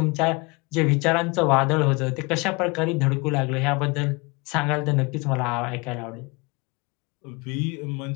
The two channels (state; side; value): quieter; right; 27.3 dB